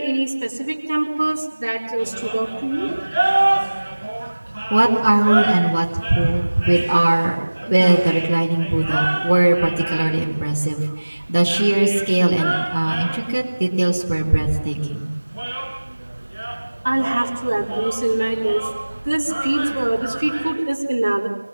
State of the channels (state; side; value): inverted; both; correlation -1.00